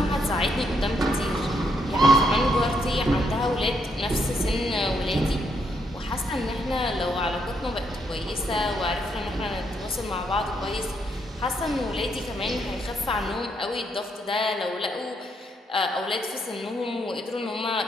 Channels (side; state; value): both; normal; correlation 0.75